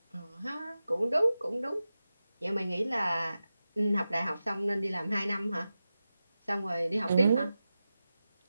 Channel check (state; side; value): inverted; both; correlation -0.93